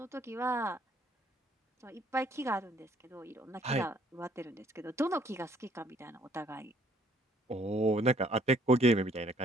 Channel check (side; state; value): both; normal; correlation 0.62